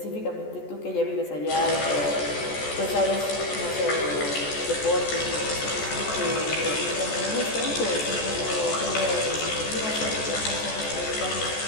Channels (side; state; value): right; late; 14 ms